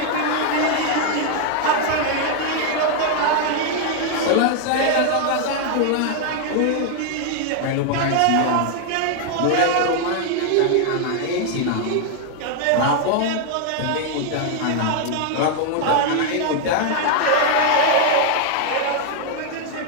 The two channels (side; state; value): both; different; correlation 0.00